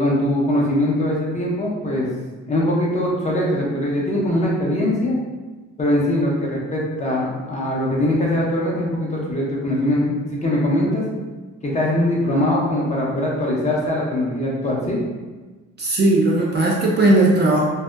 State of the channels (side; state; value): both; normal; correlation 0.51